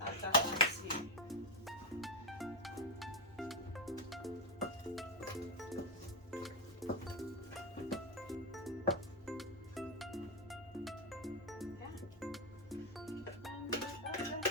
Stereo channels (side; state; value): both; normal; correlation 0.05